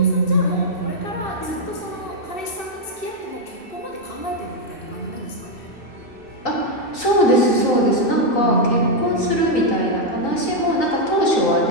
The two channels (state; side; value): late; right; 2.6 ms